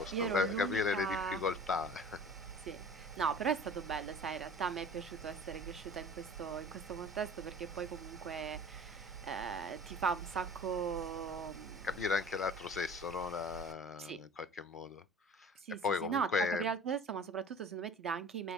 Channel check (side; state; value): both; normal; correlation 0.42